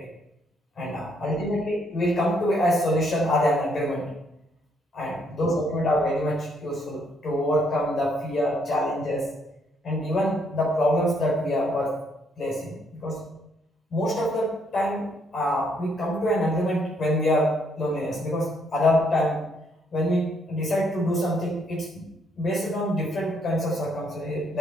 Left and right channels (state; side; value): normal; both; correlation 0.71